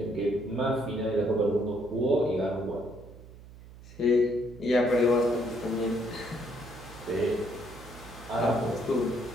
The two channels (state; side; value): noise; right; hum, 18 dB below the sound